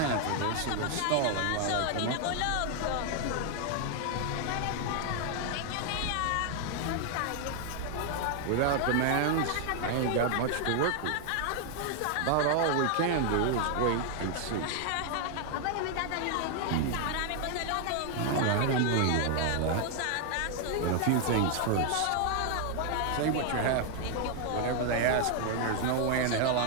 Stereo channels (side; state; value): both; different; correlation 0.00